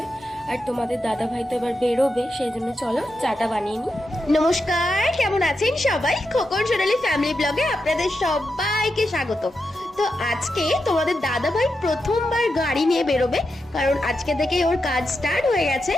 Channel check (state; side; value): normal; both; correlation 0.87